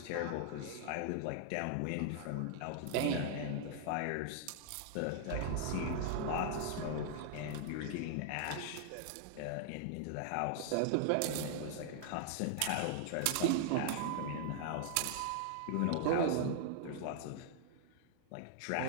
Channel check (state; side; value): different; both; correlation -0.01